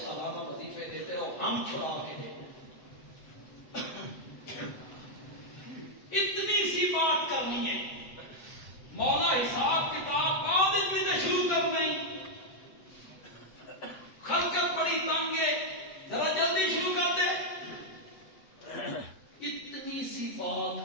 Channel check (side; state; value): right; late; 7.9 ms